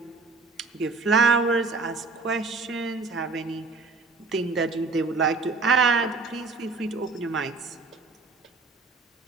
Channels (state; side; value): quieter; left; 3.8 dB